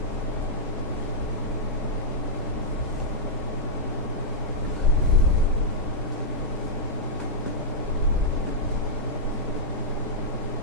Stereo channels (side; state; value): both; normal; correlation -0.09